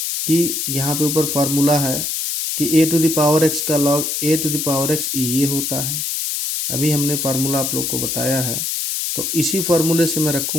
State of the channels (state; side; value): noise; left; hiss, 1 dB below the sound